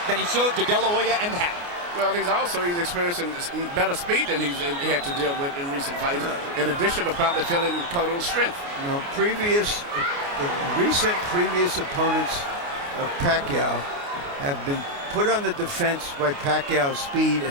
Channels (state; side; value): late; left; 29 ms